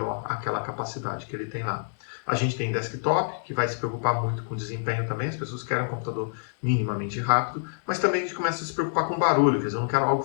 aquela capacidade que ele tem lá. A gente tem desktop, que vai se preocupar muito com desempenho também, as pessoas querem um computador minimamente rápido, mas também a gente começa a se preocupar com barulho, quer dizer, eu não quero algo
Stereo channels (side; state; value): right; silent; digital silence